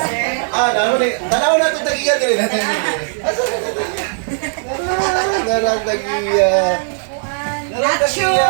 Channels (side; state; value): left; silent; digital silence